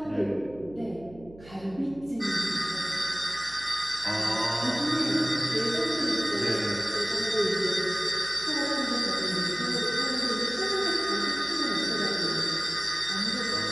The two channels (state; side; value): noise; right; hum, 20 dB below the sound